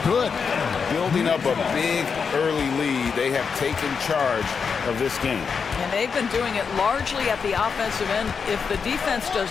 Building up a big early lead, they have taken charge of this game. And they've been doing it largely at the offensive end. If the defense does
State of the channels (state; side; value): quieter; right; 5.8 dB